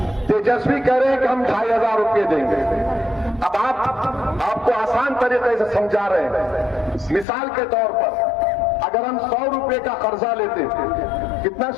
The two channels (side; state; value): right; drops out; at 7.2 s